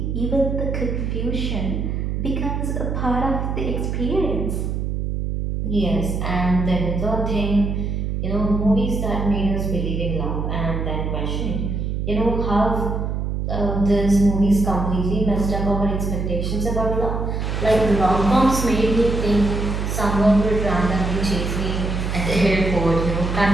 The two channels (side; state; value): right; noise; hum, 1 dB below the sound